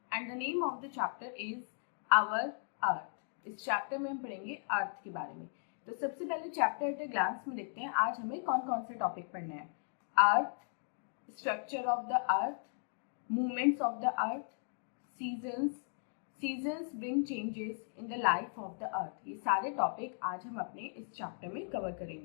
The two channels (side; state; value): right; silent; digital silence